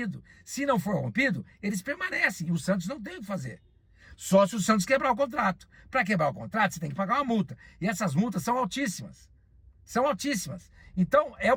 Se não for rompido, eles permanecem. E o Santos não tem o que fazer. Só se o Santos quebrar o contrato. Para quebrar o contrato, você tem que pagar uma multa. E essas multas são altíssimas. São altíssimas. Então, é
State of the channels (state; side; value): identical; both; correlation 1.00